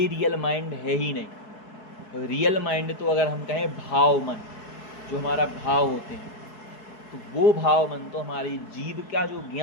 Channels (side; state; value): right; late; 4.7 ms